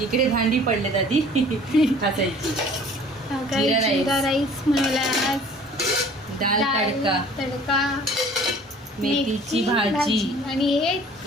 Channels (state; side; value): normal; both; correlation 0.50